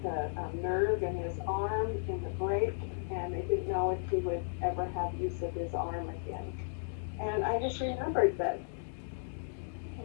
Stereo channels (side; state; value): right; silent; digital silence